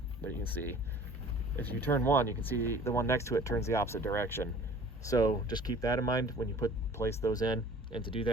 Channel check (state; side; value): normal; both; correlation 0.48